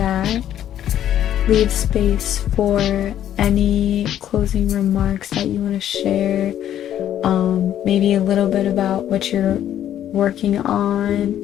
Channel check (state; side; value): quieter; right; 11.0 dB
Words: Leave space for any closing remarks that you want to share. Maybe a little bit about what you're working on.